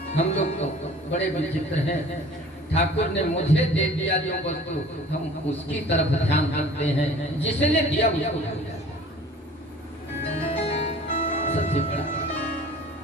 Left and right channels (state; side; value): normal; both; correlation 0.47